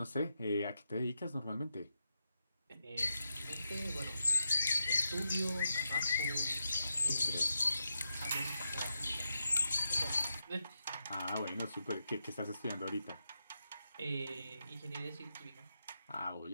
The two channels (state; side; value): inverted; both; correlation -0.85